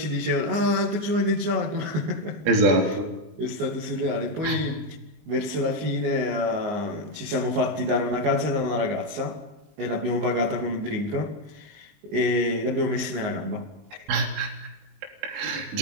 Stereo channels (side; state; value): left; late; 19 ms